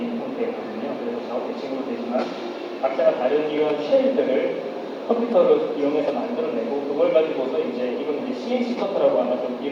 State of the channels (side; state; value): both; identical; correlation 1.00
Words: 형태거든요. 그래서 작업 대칭으로 되지만 각자가 다른 이런 쉘들을 컴퓨터를 이용해서 만들어내고 그걸 가지고서 이제 이건 이제 CNC 커터라고 아마 좀